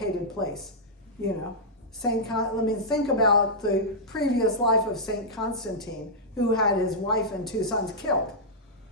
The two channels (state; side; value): normal; both; correlation -0.10